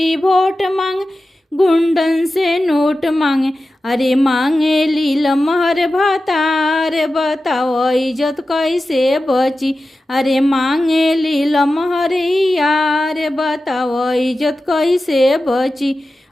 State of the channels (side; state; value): both; normal; correlation 0.93